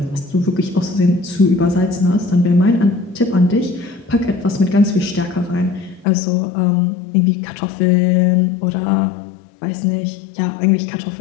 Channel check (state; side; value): drops out; right; at 6.1 s